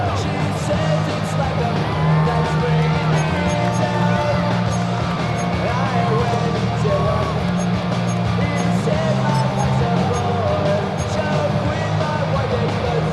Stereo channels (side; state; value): both; identical; correlation 1.00